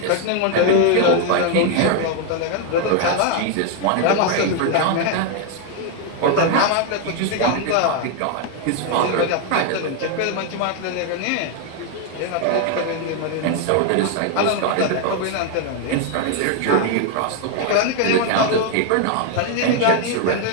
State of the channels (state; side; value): different; both; correlation 0.01